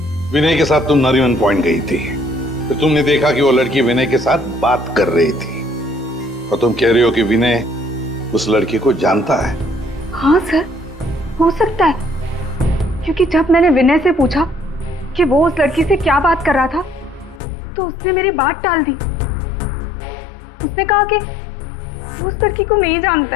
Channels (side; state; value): right; drops out; at 17.4 s